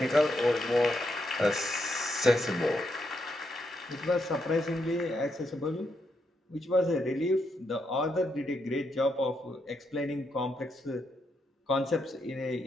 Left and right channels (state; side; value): normal; both; correlation 0.80